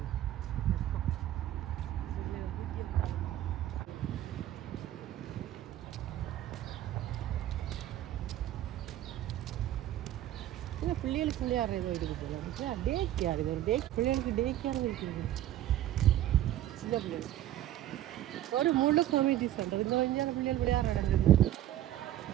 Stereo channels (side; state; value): left; quieter; 13.0 dB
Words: இல்லை பிள்ளைகளுக்கு விளையாடுற ஏதோ இருக்குது போல. டே கேர் இது ஒரு பிள்ளைகளுக்கு டே கேர் இருக்குது. சின்ன பிள்ளைகளுக்கு ஒரு முழு கமிட்டி சென்டர். இந்த வஞ்சான பிள்ளைகள் விளையாடுற இடம்.